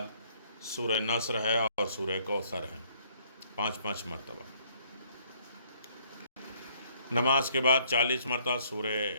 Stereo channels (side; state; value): both; inverted; correlation -0.64